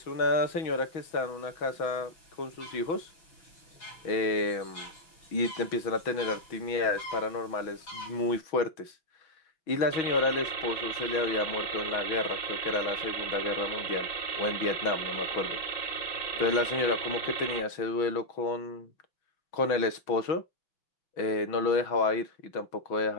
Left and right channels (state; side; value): late; right; 6.2 ms